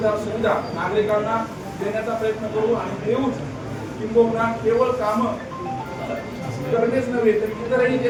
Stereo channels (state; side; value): identical; both; correlation 1.00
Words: सुविधा नागरिकांना देण्याचा प्रयत्न करू आणि देऊच किंबहुना केवळ कामं करणेच नव्हे तर इतरही